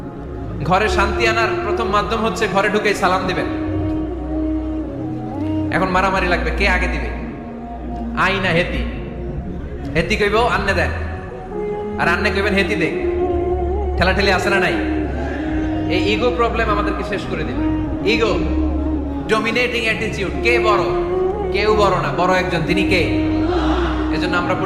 ঘরে শান্তি আনার প্রথম মাধ্যম হচ্ছে ঘরে ঢুকে সালাম দিবেন। এখন মারামারি লাগবে, কে আগে দিবে? আই না হেতি? হেতি কইব আন্নে দেন, আর আন্নে কইবেন হেতি দে। ঠেলাঠেলি আছে না নাই? এই ইগো প্রবলেম আমাদেরকে শেষ করে দিবে। Ego, dominating attitude. কে বড়? কেউ বড় না, বড় একজন, তিনি কে? এজন্য আমরা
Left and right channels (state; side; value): identical; both; correlation 1.00